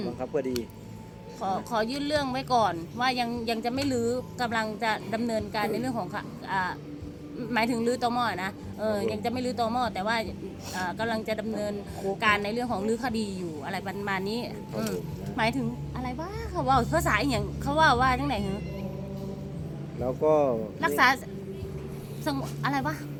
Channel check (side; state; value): both; identical; correlation 1.00